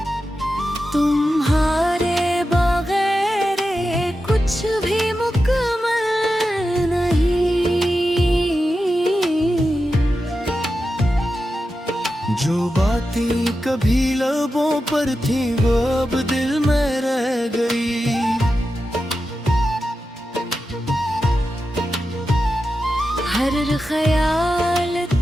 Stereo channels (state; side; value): normal; both; correlation 0.91